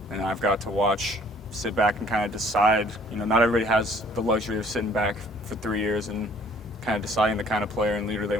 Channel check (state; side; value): normal; both; correlation 0.57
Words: and I've got to sit back and kind of decide. Not everybody has the luxury of sitting back for 3 years and kind of deciding the kind of player and leader they